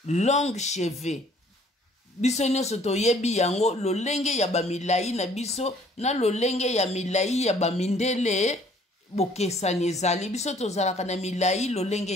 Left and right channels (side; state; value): both; normal; correlation 0.58